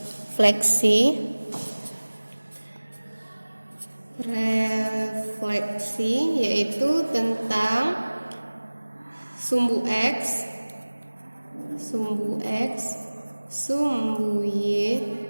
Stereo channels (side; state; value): both; inverted; correlation -1.00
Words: yaitu tentang sumbu X, sumbu Y,